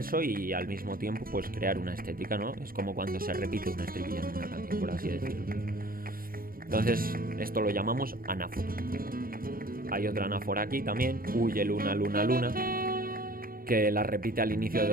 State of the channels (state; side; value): late; left; 0.42 ms